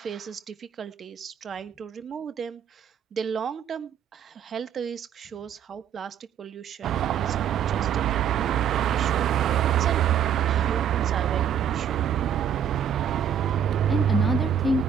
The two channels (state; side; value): quieter; left; 8.3 dB